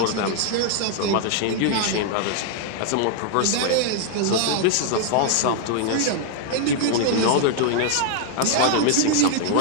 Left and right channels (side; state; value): both; different; correlation -0.01